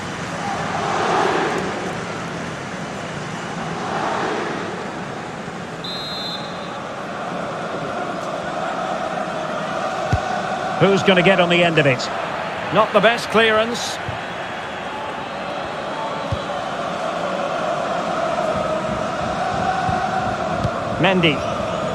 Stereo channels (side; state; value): both; identical; correlation 1.00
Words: Who's going to get on the end of it? Not the best clearance. Mendy.